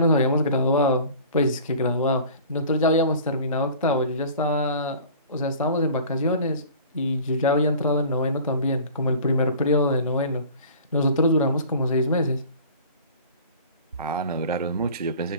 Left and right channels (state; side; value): inverted; both; correlation -0.43